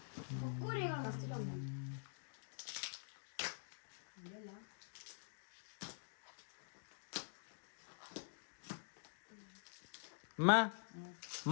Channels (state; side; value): silent; right; digital silence